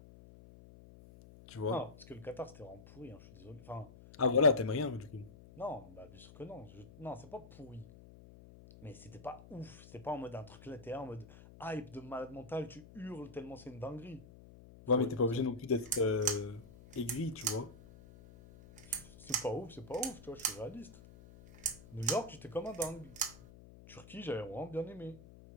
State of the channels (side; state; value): left; noise; hum, 19 dB below the sound